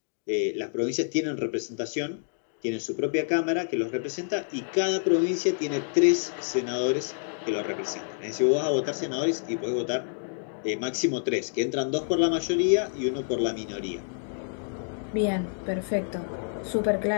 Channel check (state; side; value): silent; right; digital silence